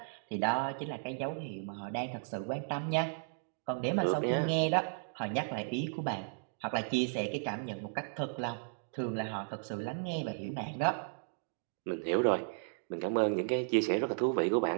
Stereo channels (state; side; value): silent; left; digital silence